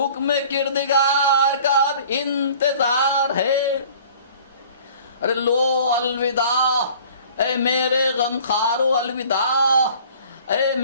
کردگار کا اب انتظار ہے۔ ارے لو الوداع اے میرے غم خارو، الوداع اے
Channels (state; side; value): inverted; both; correlation -0.50